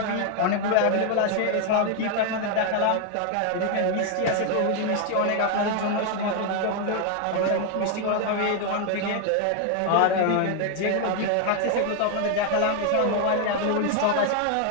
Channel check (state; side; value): different; both; correlation 0.00